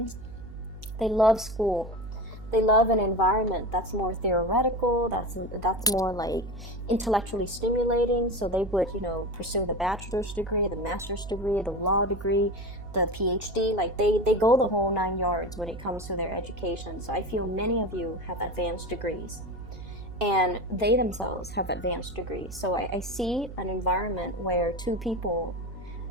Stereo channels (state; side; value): noise; right; hum, 13 dB below the sound